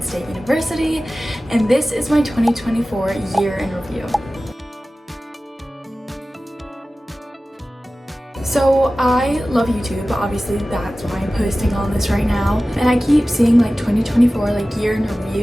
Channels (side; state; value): both; normal; correlation 0.96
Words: State University, and this is my 2024 year in review. So I love YouTube, obviously that's why I'm posting on this right now, and I keep seeing like 2024 like year in